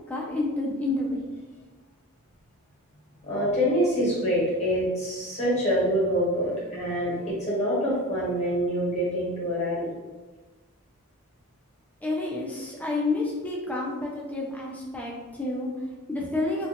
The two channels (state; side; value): normal; both; correlation 0.36